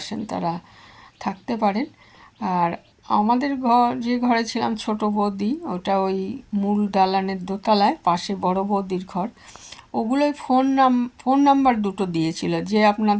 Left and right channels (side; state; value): both; identical; correlation 1.00